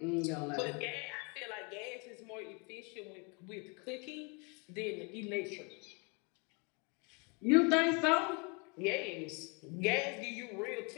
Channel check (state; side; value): quieter; right; 32.7 dB